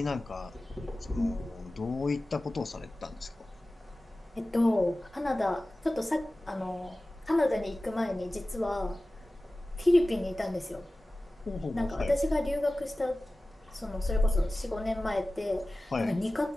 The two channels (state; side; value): normal; both; correlation 0.96